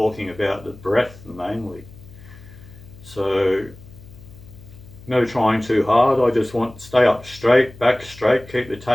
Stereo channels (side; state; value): left; noise; hum, 20 dB below the sound